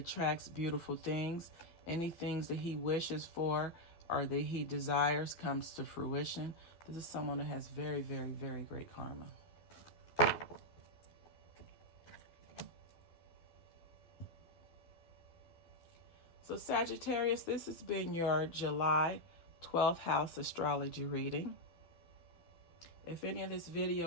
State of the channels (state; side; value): late; right; 12 ms